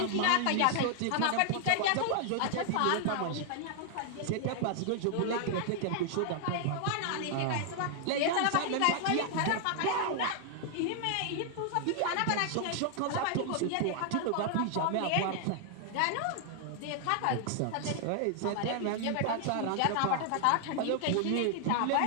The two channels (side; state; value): both; different; correlation 0.00